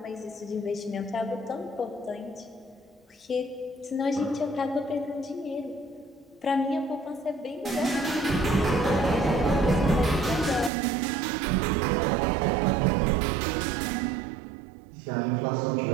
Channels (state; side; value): drops out; left; at 10.7 s